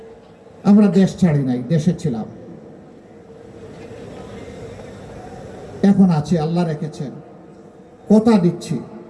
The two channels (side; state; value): both; identical; correlation 1.00